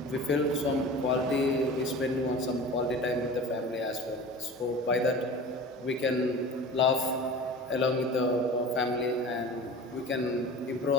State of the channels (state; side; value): normal; both; correlation 0.36